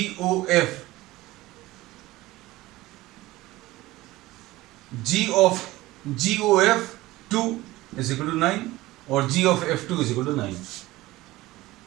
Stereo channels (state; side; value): quieter; left; 18.2 dB